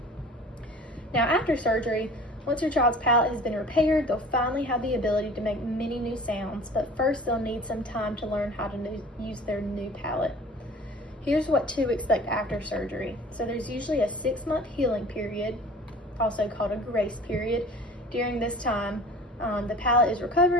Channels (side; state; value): both; normal; correlation 0.44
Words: Now, after surgery, once your child's palate has been repaired, they'll finally have the ability to make many new sounds, but first they'll need some time to learn how to use their new palate. Here's what to expect after surgery. So there's usually a 6-month healing period, also called a grace period. During this time, the palate is